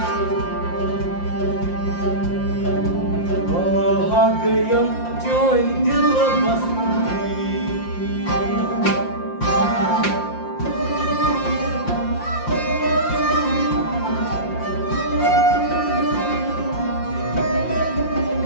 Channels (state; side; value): late; right; 5.7 ms